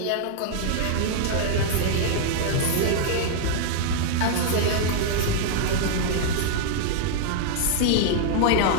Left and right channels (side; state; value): both; different; correlation -0.01